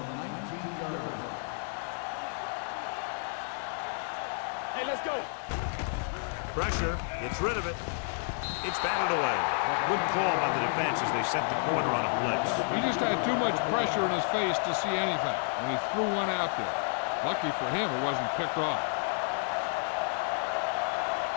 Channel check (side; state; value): right; silent; 57 dB below the other